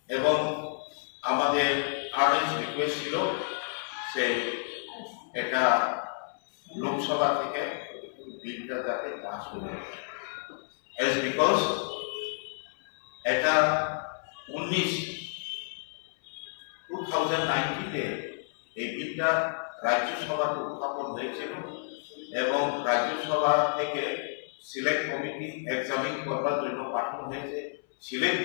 এবং আমাদের আর্নেস্ট রিকোয়েস্ট ছিল সে এটা লোকসভা থেকে বিলটা যাতে পাস করে এজ বিকজ এটা 2019-তে এই বিলটা রাজ্যসভাতে উত্থাপন হয়েছিল এবং রাজ্যসভা থেকে সিলেক্ট কমিটি এক্সামিন করবার জন্য পাঠানো হয়েছে। সিলেক্ট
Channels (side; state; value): right; silent; 58 dB below the other